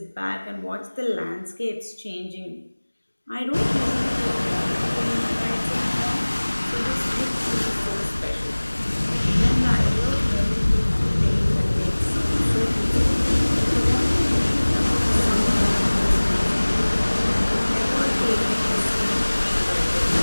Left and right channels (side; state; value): both; inverted; correlation -1.00